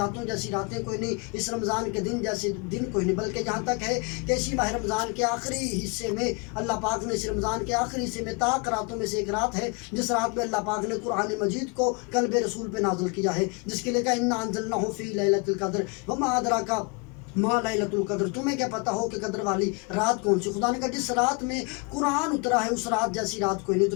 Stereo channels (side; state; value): right; quieter; 31.2 dB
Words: جیسی راتیں کوئی نہیں، اس رمضان کے دن جیسے دن کوئی نہیں، بلکہ یہاں تک ہے کہ اسی ماہ رمضان کے آخری حصے میں اللہ پاک نے اس رمضان کے آخری حصے میں طاق راتوں میں سے ایک رات ہے جس رات میں اللہ پاک نے قرآن مجید کو قلب رسول پہ نازل کیا ہے، جس کے لیے کہا انا انزلناہ فی لیلۃ القدر وما ادراک ما لیلۃ القدر، تمہیں کیا پتہ ہو کہ قدر والی رات کون سی؟ خدا نے کہا جس رات میں قرآن اترا ہے اس رات جیسی رات کوئی نہیں۔